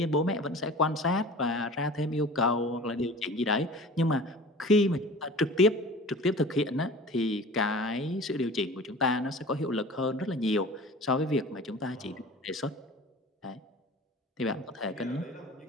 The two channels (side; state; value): both; normal; correlation 0.41